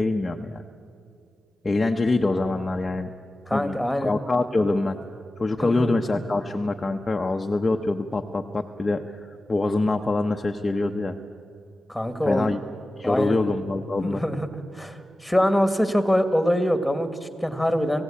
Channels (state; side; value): normal; both; correlation 0.95